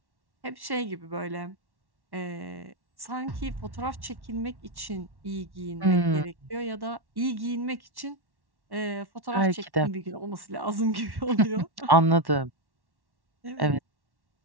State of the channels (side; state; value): left; late; 1.1 ms